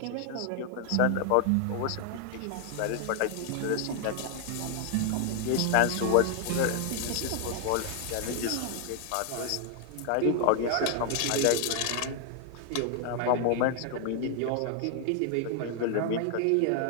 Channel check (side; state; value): both; different; correlation 0.00